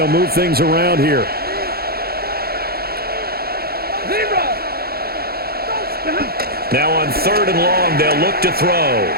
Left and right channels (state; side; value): late; left; 0.45 ms